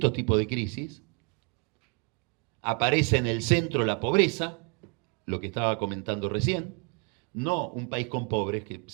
tipos de crisis, aparece en el centro la pobreza, lo que estaba comentando recién, no un país con pobres, que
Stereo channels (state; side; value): quieter; left; 36.8 dB